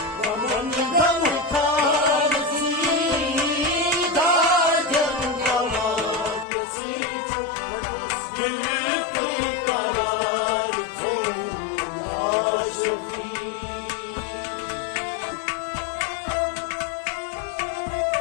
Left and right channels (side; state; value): right; drops out; at 6.5 s